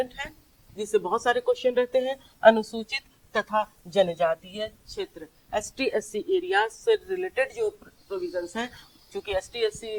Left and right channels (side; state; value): both; identical; correlation 1.00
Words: है, जिससे बहुत सारे क्वेश्चन रहते हैं। अनुसूचित तथा जनजातीय क्षेत्र, एसटी एससी एरिया से रिलेटेड जो प्रोविजंस हैं, क्योंकि एसटी